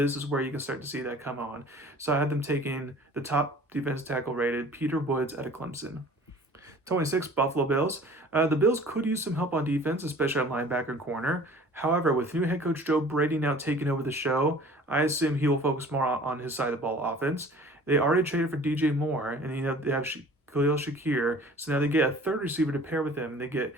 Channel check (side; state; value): both; normal; correlation 0.47